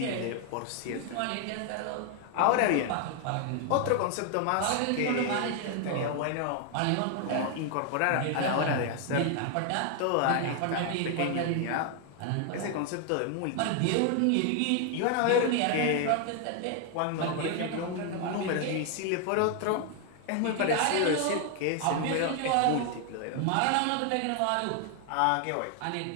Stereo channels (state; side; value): different; both; correlation 0.00